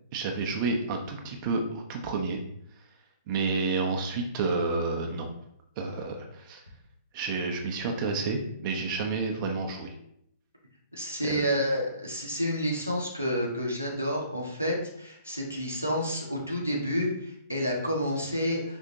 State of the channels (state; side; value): inverted; both; correlation -0.53